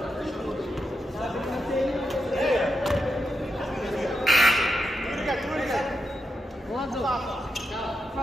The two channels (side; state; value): both; normal; correlation 0.86